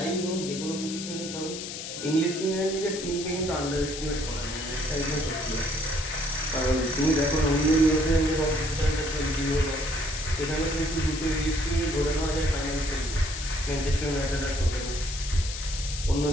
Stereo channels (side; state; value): left; noise; hiss, 8 dB below the sound